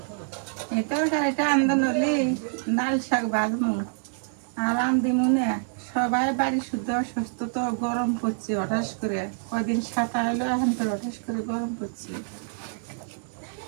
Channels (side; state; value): left; silent; 61 dB below the other